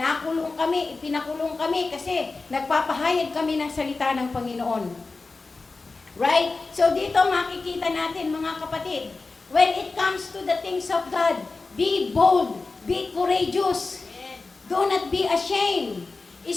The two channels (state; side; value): quieter; right; 3.8 dB